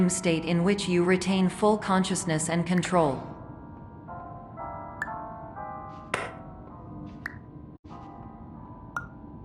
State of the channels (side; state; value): both; identical; correlation 1.00